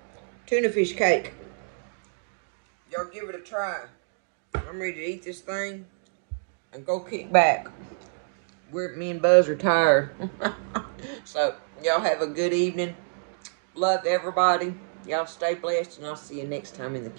tuna fish cake. Y'all give it a try. I'm ready to eat this thing and go kick back. Me and Buzz are tired. So y'all have a good evening. Love everybody. Y'all stay blessed, and I'll see you next time in the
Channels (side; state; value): left; silent; digital silence